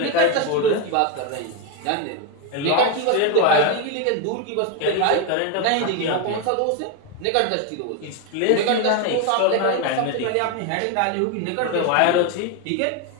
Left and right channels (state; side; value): different; both; correlation 0.02